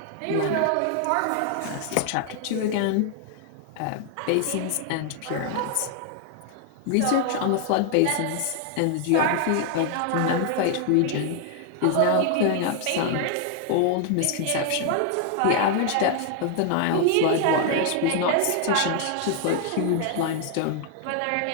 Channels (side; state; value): both; different; correlation 0.00